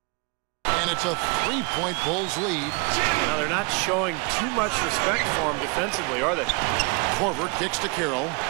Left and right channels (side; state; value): left; quieter; 31.1 dB